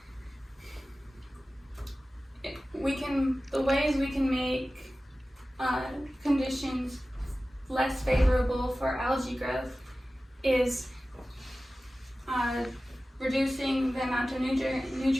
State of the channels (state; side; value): normal; both; correlation 0.96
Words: the ways we can make conditions less favorable for algae growth is reducing the amount of